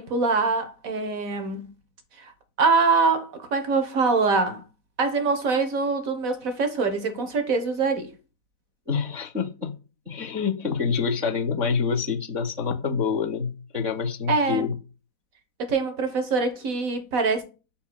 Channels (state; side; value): late; left; 4.0 ms